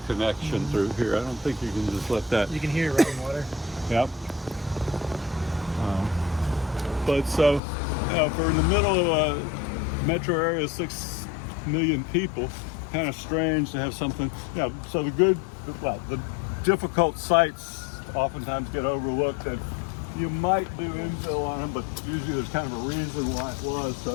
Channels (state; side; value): drops out; right; at 7.6 s